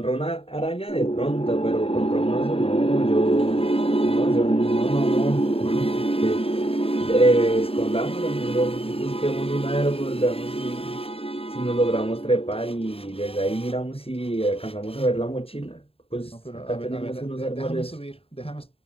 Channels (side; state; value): right; late; 0.27 ms